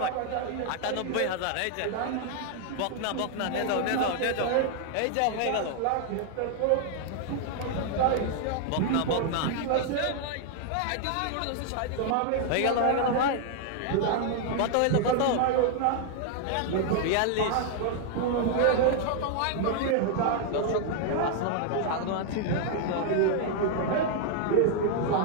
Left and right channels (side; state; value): both; different; correlation 0.00